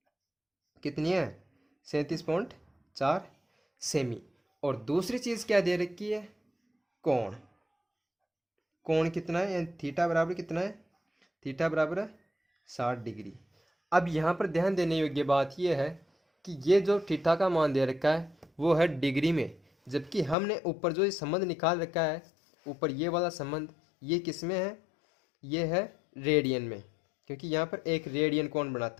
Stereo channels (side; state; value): right; drops out; at 20.4 s